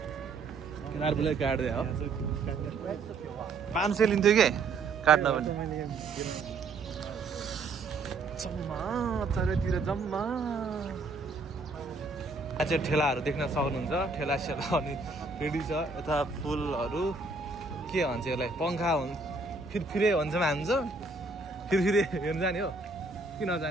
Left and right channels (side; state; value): left; quieter; 3.8 dB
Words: केदार बुढोले काट्दै हो 500 लिन्थ्यो कि काट्न पनि जम्मा चारैतिर जम्मा चाहिँ ठेलाहरू देख्न सक्नुहुन्छ ठेला सेला अनि रेडी छ यता फुलहरू के भन्छ यसलाई पङ्खा हुन्छ फिरफिरे भन्छ हान्छ फिरफिरे हेर्नु जाने हो कि